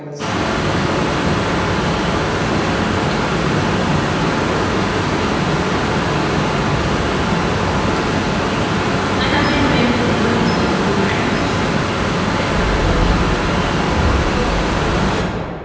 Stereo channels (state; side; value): identical; both; correlation 1.00